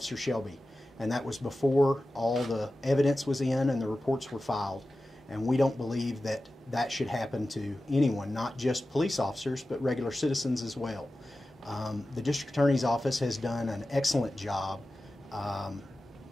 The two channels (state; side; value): normal; both; correlation 0.94